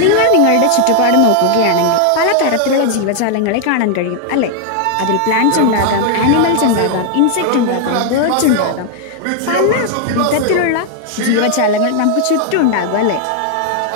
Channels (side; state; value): both; different; correlation 0.00